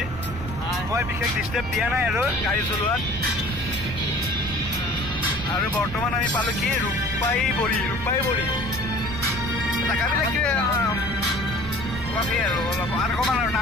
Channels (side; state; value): both; normal; correlation 0.47